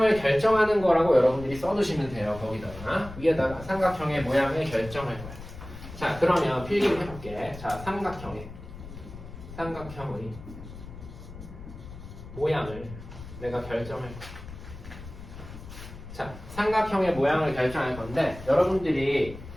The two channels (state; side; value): noise; left; rumble, 14 dB below the sound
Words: 결정하는 거라고 여러분들이 써두시면 돼요. 거기다가 위에다가 삼각형의 모양을 결정할 거야. 자, 그러면 필기를 해볼게. 자, 삼각형의 모양을 내가 결정할 거야. 자, 삼각형의 모양을 결정할 건데 여러분들이